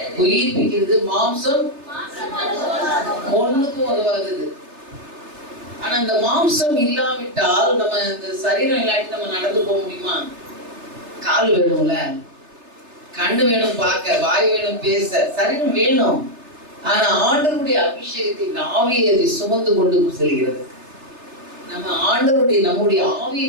உயிர்ப்பிக்கிறது, மாம்சம் ஒண்ணுக்கும் உதவாதது. ஆனா இந்த மாம்சம் இல்லாவிட்டால் நம்ம இந்த சரீரம் இல்லாட்டி நம்ம நடந்து போக முடியுமா? கால் வேணும்ல, கண்ணு வேணும் பார்க்க, வாய் வேணும் பேச, சரீரம் வேணும். ஆனா ஆண்டவருடைய அபிஷேகத்தை ஆவியை அதை சுமந்து கொண்டு செல்கிறது. நம்ம ஆண்டவருடைய நம்முடைய ஆவியை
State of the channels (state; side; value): late; left; 3.4 ms